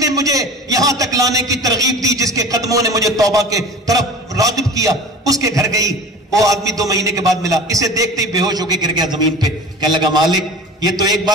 مجھے یہاں تک لانے کی ترغیب دی, جس کے قدموں نے مجھے توبہ کے طرف راغب کیا, اس کے گھر گئی. وہ آدمی 2 مہینے کے بعد ملا, اسے دیکھتے ہی بے ہوش ہو کے گر گیا زمین پہ. کہنے لگا مالک یہ تو ایک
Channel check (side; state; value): both; normal; correlation 0.38